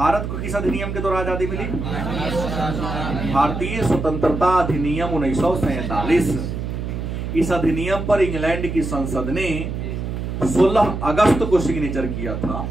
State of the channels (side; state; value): right; noise; hum, 4 dB below the sound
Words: को किस अधिनियम के द्वारा आजादी मिली? भारतीय स्वतंत्रता अधिनियम 1947। इस अधिनियम पर इंग्लैंड की संसद ने 16 अगस्त को सिग्नेचर किया था,